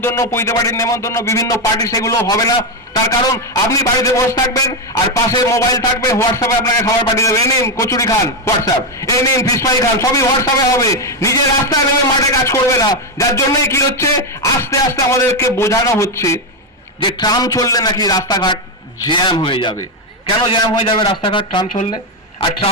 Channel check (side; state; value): both; normal; correlation 0.07